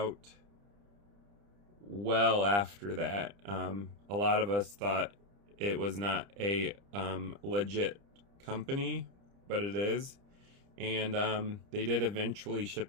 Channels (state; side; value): late; left; 30 ms